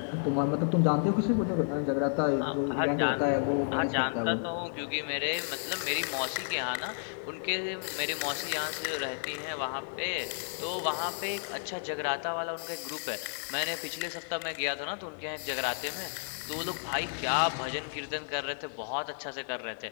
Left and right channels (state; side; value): silent; right; digital silence